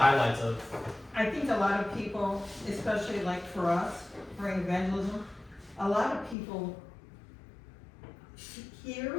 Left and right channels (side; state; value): right; drops out; at 6.4 s